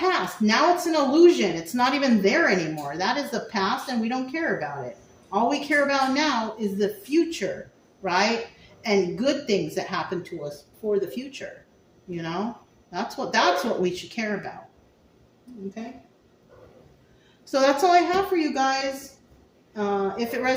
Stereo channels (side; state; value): both; identical; correlation 1.00